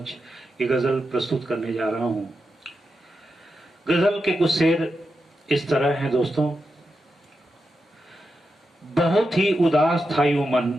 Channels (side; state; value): both; normal; correlation 0.88